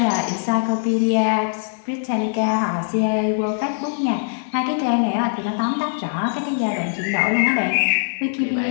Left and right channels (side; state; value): right; silent; digital silence